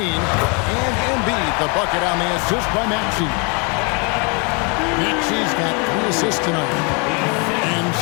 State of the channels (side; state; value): right; quieter; 33.6 dB